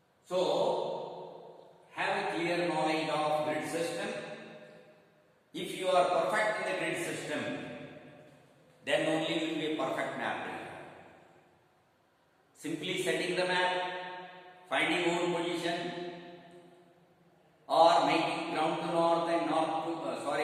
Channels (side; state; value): both; identical; correlation 1.00